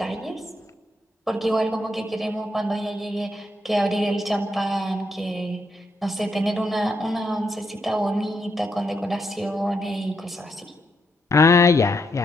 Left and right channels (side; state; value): both; normal; correlation 0.78